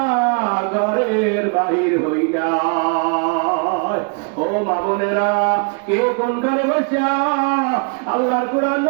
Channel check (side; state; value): left; quieter; 35.7 dB